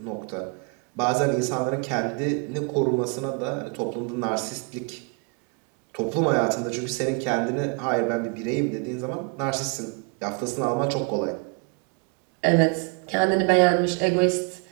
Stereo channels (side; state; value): left; quieter; 34.2 dB